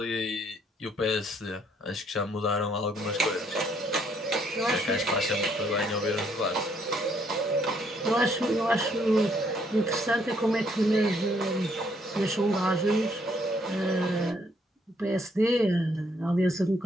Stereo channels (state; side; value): normal; both; correlation 0.68